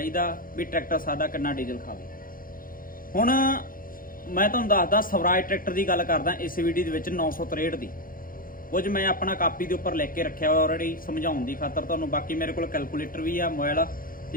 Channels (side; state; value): right; late; 0.41 ms